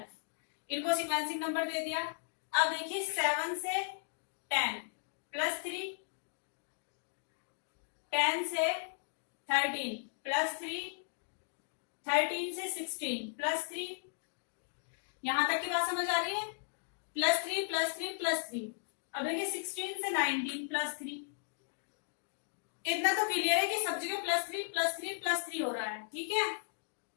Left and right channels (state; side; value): silent; right; digital silence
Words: इनको सीक्वेंसिंग नंबर दे दिया। अब देखिए 7 से 10 +3, 10 से 13 +3, 13 से 16 +3। यहां तक की बात समझ आ रही है, +3 अब देखिए 16 से 19 +3। इतना तो क्लियर है कि सब जगह +3 हो रहा है। ठीक है,